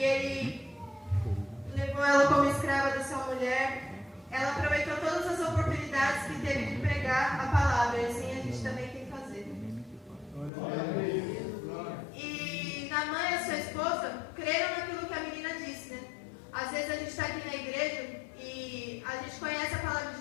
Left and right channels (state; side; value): drops out; right; at 10.5 s